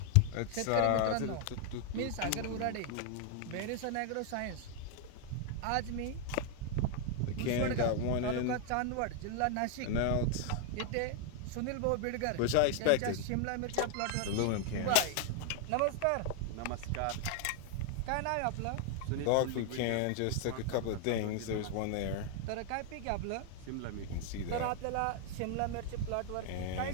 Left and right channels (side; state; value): both; different; correlation 0.00